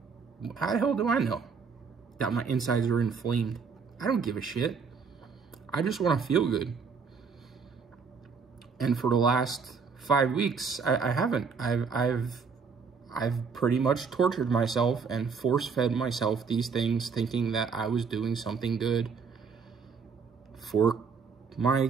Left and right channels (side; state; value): left; quieter; 5.5 dB